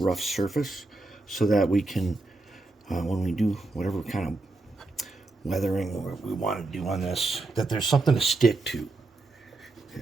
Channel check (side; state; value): left; quieter; 3.2 dB